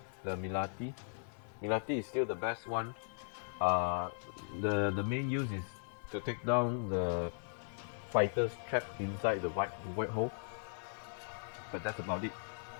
the Milati. Milati is still the best one. The main use is to take down the fighters trapped inside the white hole, but that's about it.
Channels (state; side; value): silent; right; digital silence